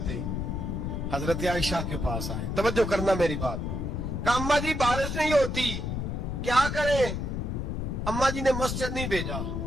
हजरत आयशा के पास आए। तवज्जो करना मेरी बात। कहा अम्मा जी बारिश नहीं होती, क्या करें? अम्मा जी ने मस्जिद नहीं भेजा,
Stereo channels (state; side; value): noise; left; rumble, 2 dB below the sound